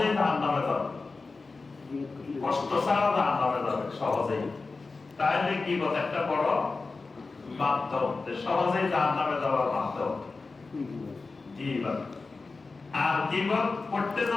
জাহান্নামে যাবে, কষ্ট ছাড়া জাহান্নামে যাবে সহজেই, তাহলে গীবত একটা বড় মাধ্যম, সহজেই জাহান্নামে যাওয়ার মাধ্যম গীবত। আর গীবত করতে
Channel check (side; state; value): right; quieter; 4.0 dB